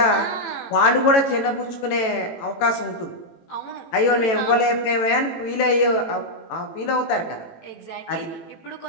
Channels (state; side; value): late; right; 18 ms